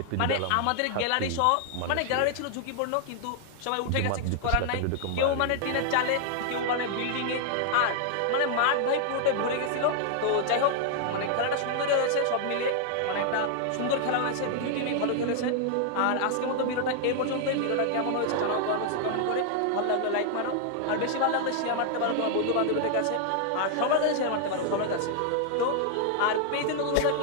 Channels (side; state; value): both; different; correlation 0.00